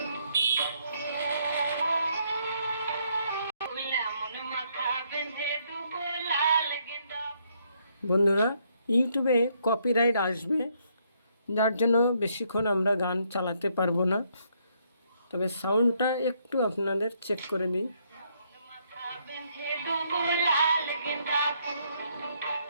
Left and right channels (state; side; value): inverted; both; correlation -0.72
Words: বন্ধুরা, ইউটিউবে কপিরাইট আসবে, যার জন্য বেশিক্ষণ আমরা গান চালাতে পারবো না। তবে সাউন্ডটা একটু আপনাদের চেক করে দিই।